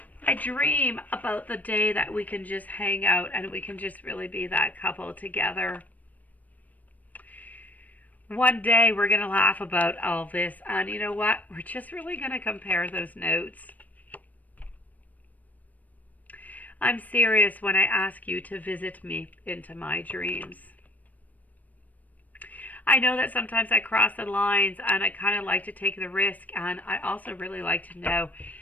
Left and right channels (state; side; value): late; right; 0.076 ms